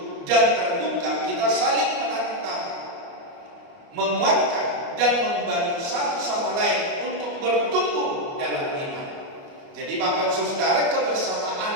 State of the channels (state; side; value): late; left; 30 ms